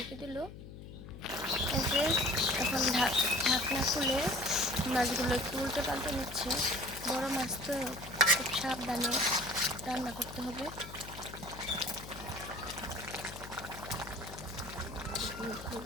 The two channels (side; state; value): left; noise; hum, 13 dB below the sound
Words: দিল। এই যে এখন ঢাকনা খুলে মাছগুলো একটু উল্টে পাল্টে নিচ্ছে। বড় মাছ তো খুব সাবধানে রান্না করতে হবে।